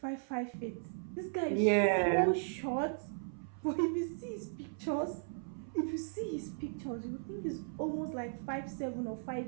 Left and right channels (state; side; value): silent; left; 53 dB below the other